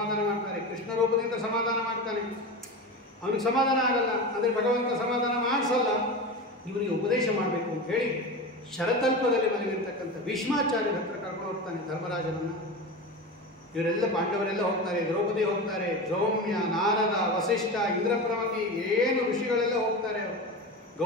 ಮಾಡ್ತಾರೆ, ಕೃಷ್ಣ ರೂಪದಿಂದ ಸಮಾಧಾನ ಮಾಡ್ತಾನೆ. ಅವನಿಗೆ ಸಮಾಧಾನ ಆಗಲ್ಲ ಅಂದರೆ ಭಗವಂತ ಸಮಾಧಾನ ಮಾಡಿಸಲ್ಲ. ಇವರಿಗೆ ಉಪದೇಶ ಮಾಡಬೇಕು ಅಂತ ಹೇಳಿ ಶರತಲ್ಪದಲ್ಲಿ ಮಲಗಿರ್ತಕ್ಕಂಥ ಭೀಷ್ಮಾಚಾರ್ಯರ ಹತ್ರ ಕರ್ಕೊಂಡು ಹೋಗ್ತಾನೆ ಧರ್ಮರಾಜನನ್ನು. ಇವರೆಲ್ಲ ಪಾಂಡವರೆಲ್ಲ ಹೋಗ್ತಾರೆ, ದ್ರೌಪದಿ ಹೋಗ್ತಾರೆ, ದ್ರೌಮ್ಯ, ನಾರದ, ವಸಿಷ್ಠ, ಇಂದ್ರಪ್ರಮತಿ, ಏನು ಋಷಿಗಳೆಲ್ಲ ಹೋಗ್ತಾರೆ,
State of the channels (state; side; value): normal; both; correlation 0.25